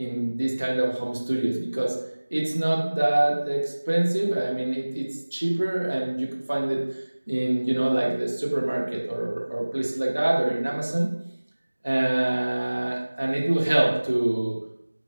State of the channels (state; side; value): inverted; both; correlation -1.00